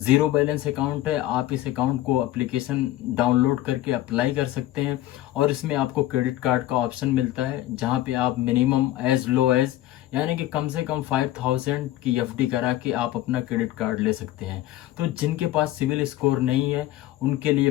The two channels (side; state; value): right; quieter; 14.9 dB